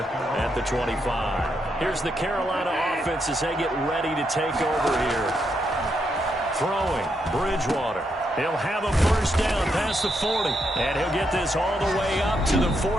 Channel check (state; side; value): normal; both; correlation 0.80